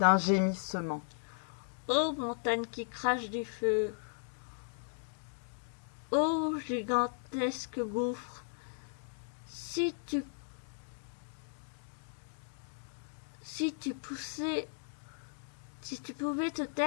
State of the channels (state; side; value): silent; right; digital silence